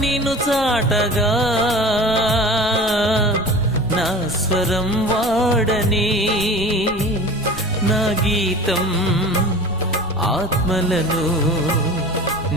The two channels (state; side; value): noise; left; rumble, 17 dB below the sound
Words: నిన్ను చాటగా నా స్వరం వాడని నా గీతం ఆత్మలను